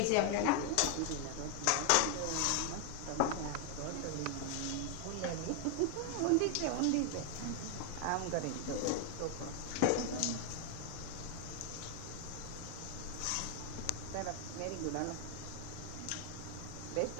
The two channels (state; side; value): different; both; correlation 0.00